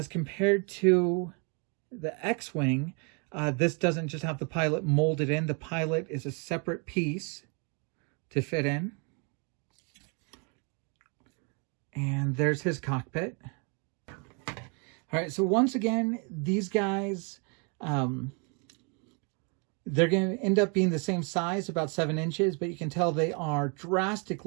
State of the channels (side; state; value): left; quieter; 35.8 dB